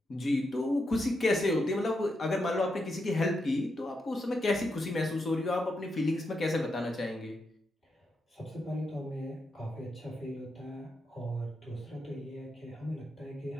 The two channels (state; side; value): normal; both; correlation 0.84